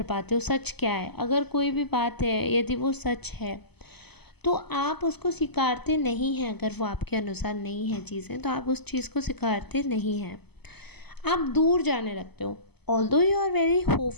पाते हो सच क्या है। अगर कोई भी बात है, यदि वो सच है, तो आप उसको स्वीकारते नहीं हैं। अगर वो आपके अनुसार नहीं है चीज़ें, तो आप उस चीज़ को स्वीकारते नहीं हैं, आप दूर जाने लगते हो। Although you are very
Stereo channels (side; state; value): right; late; 0.98 ms